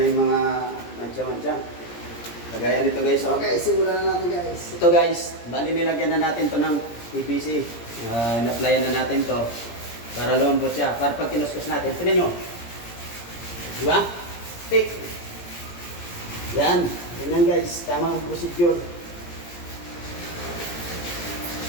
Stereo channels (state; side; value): late; right; 17 ms